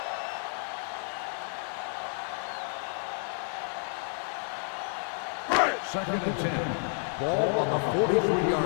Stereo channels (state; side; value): silent; right; 57 dB below the other